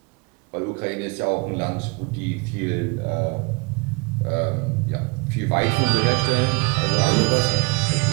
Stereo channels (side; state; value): left; quieter; 28.6 dB